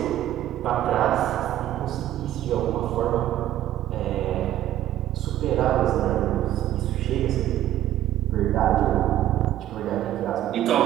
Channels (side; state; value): left; quieter; 13.1 dB